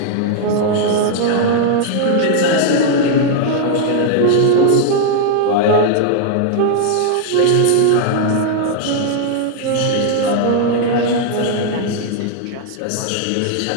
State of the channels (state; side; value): different; both; correlation 0.00